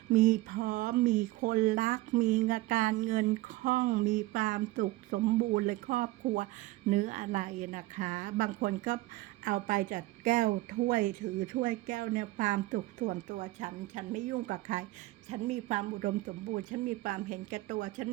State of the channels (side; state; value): left; quieter; 18.7 dB